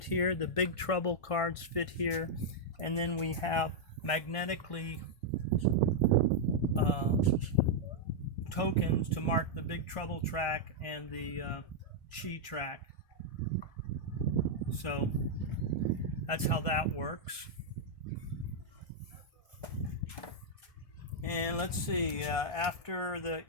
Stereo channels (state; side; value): late; right; 1.6 ms